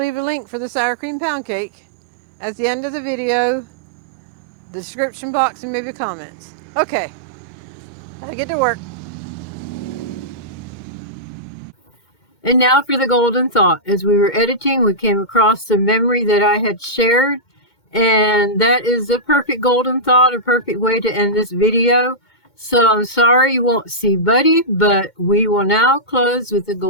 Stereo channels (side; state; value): right; late; 2.1 ms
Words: a link for the sour cream pound cake at the end of the video, the description box, and maybe comments. Okay, I get to work. And now for the golden thought. As we were editing, we came across the memory that I had shared, and that is the perfect golden thought, a perfect way to end this video. So I'm sorry you won't see Buddy, but we will now close with the